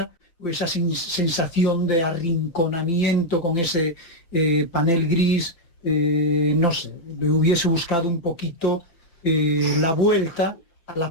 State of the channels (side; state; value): right; late; 5.9 ms